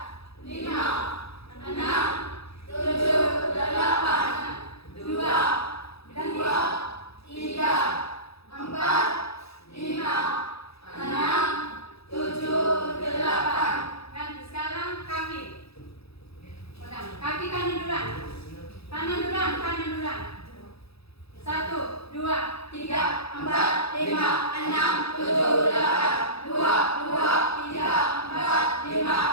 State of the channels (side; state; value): right; late; 0.77 ms